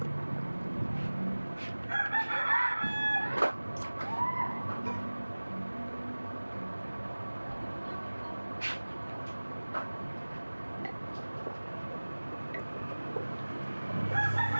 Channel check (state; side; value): inverted; both; correlation -1.00